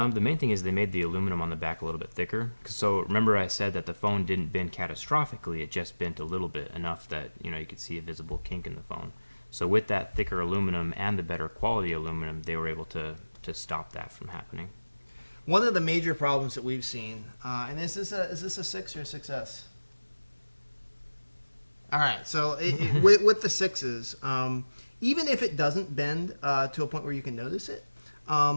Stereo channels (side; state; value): both; inverted; correlation -1.00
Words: main thing is they made the aluminum on the back a little bit thicker. So remember I said that the phone didn't bend catastrophically, it just bent a little bit, enough that you could see a visible kink in the phone. So with that thicker aluminum and the better quality aluminum, they were able to stop that from happening. One of the major problems that we've seen, and is this a 6 or a 6S? All right, so with the 6s, even if it doesn't bend to a point where you can notice it,